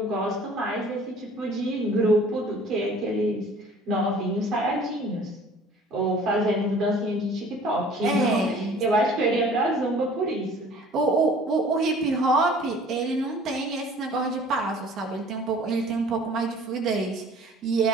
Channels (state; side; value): normal; both; correlation 0.50